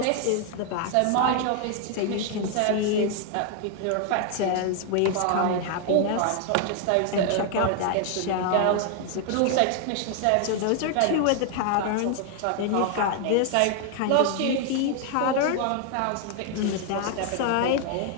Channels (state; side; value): different; both; correlation 0.00